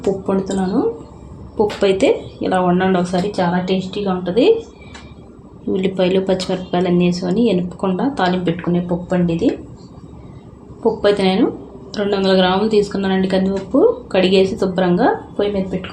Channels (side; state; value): both; identical; correlation 1.00